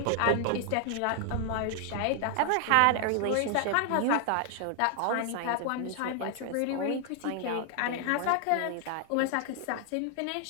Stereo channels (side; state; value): both; different; correlation 0.00